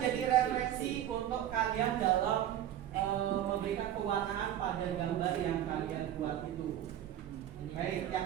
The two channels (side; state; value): left; quieter; 11.5 dB